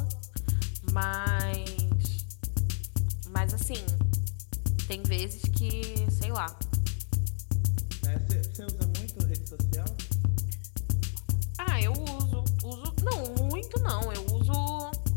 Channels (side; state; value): right; silent; 58 dB below the other